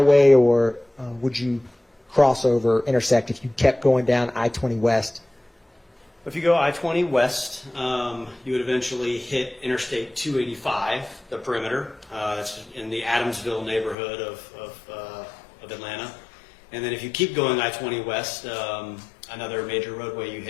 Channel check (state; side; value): drops out; right; at 14.0 s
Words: or would you cross over, intersect if you kept going down I-20 West If you go I-20 west, you would eventually hit Interstate 285, the perimeter. That's in the Adamsville neighborhood of Atlanta. And then if you keep going I-20 west, another major roadway you